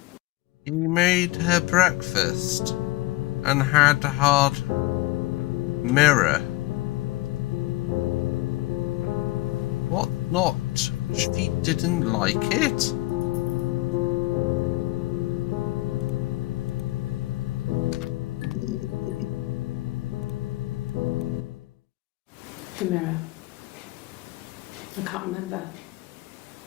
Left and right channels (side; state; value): right; quieter; 19.5 dB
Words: You made her breakfast and had a hard mirror. What not? She didn't like it? The mirror. I can't remember.